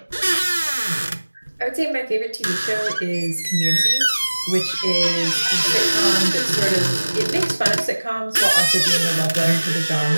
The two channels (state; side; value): inverted; both; correlation -1.00